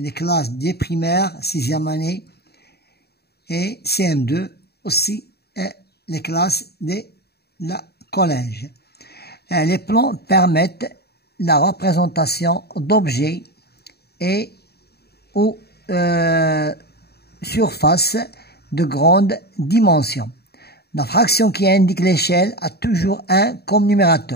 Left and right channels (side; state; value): right; late; 0.47 ms